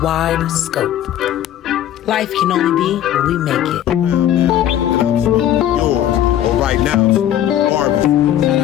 wide scope. Life can only be what we make it. And I'm smoking yours. Or right now, Barbie. Shout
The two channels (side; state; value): right; quieter; 11.5 dB